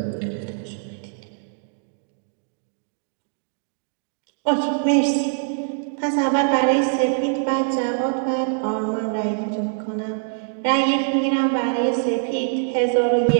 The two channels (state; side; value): silent; left; digital silence